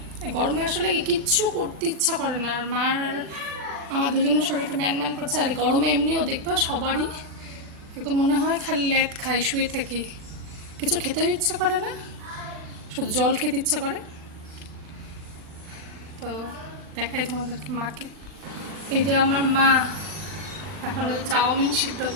এই গরমে আসলে কিচ্ছু করতে ইচ্ছা করে না, আর মার আমার দুজনের শরীরটা ম্যান ম্যান করছে, আর গরমে এমনিও দেখবে সবারই একদম মনে হয় খালি ল্যাদ খাই, শুয়ে থাকি, কিছু খেতেও ইচ্ছা করে না, শুধু জল খেতে ইচ্ছা করে। তো দেখাই তোমাদেরকে মাকে, এই যে আমার মা এখন চাউমিন সিদ্ধ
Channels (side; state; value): left; late; 39 ms